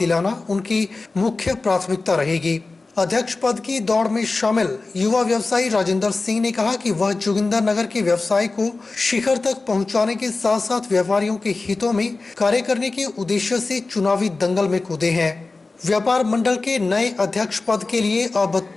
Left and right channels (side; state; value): right; quieter; 3.6 dB